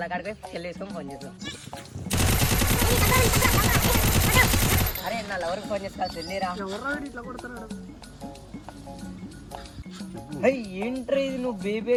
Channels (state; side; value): identical; both; correlation 1.00